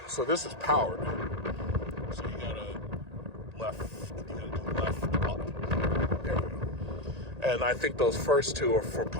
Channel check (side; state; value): left; late; 1.8 ms